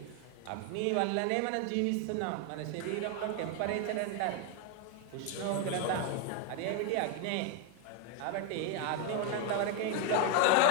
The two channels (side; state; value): both; different; correlation 0.01